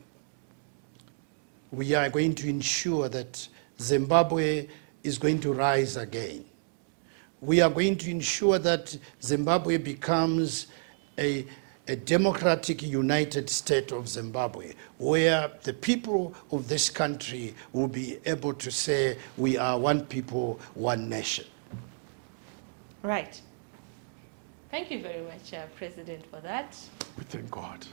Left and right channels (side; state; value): left; silent; digital silence